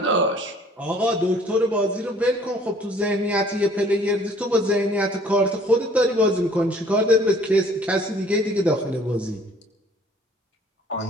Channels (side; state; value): both; normal; correlation 0.56